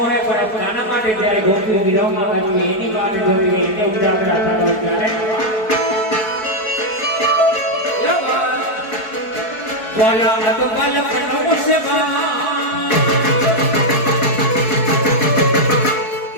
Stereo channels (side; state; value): right; late; 4.6 ms